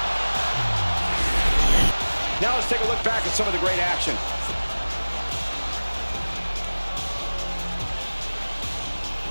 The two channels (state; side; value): inverted; both; correlation -1.00